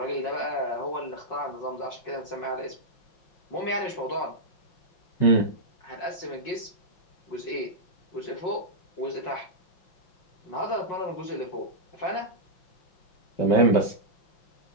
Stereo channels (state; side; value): late; right; 5.5 ms